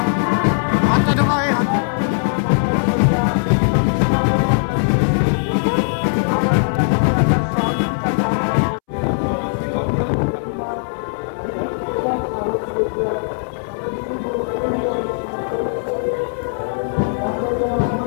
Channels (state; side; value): silent; right; 66 dB below the other